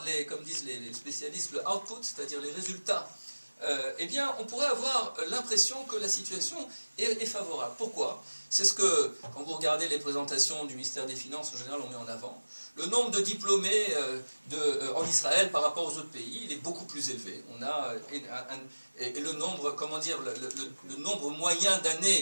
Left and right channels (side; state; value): both; inverted; correlation -1.00